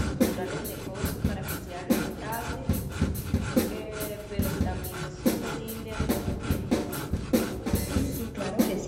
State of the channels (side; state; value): both; identical; correlation 1.00